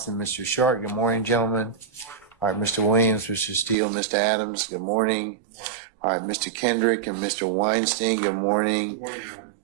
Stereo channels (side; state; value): left; drops out; at 3.8 s